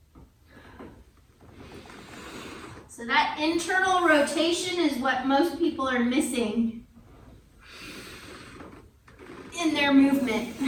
So that internal rotation is what most people are missing in their movement.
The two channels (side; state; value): both; identical; correlation 1.00